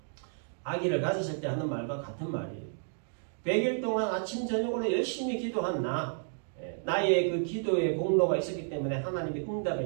아기를 가졌을 때 하는 말과 같은 말이에요. 100일 동안 아침 저녁으로 열심히 기도한 나의 그 기도의 공로가 있었기 때문에 하나님이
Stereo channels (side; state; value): left; silent; digital silence